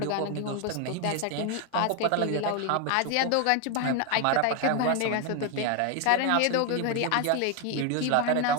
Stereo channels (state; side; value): different; both; correlation 0.01